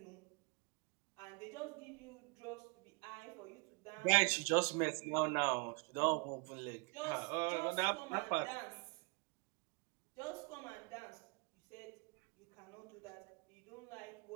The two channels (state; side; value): quieter; left; 32.6 dB